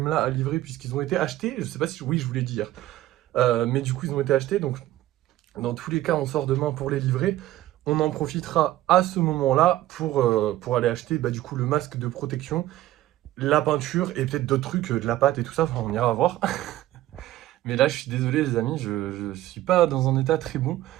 là à livrer puisqu'ils ont été achetés. Je sais pas si... Oui je vous l'ai dit hier. Mais du coup ils ont été achetés donc... Dans tous les cas, on sort demain pour les livrer. On en profitera à ce moment-là pour aller acheter du coup le masque de protection, la peinture et peut-être d'autres trucs, de la pâte et tout ça. Enfin, on ira voir. Mais là, je suis désolé les amis, je suis pas dans un état très bon.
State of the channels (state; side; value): quieter; left; 14.9 dB